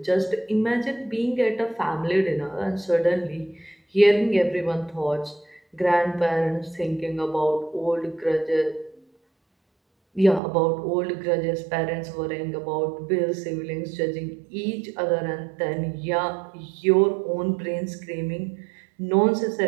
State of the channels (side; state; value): left; drops out; at 10.4 s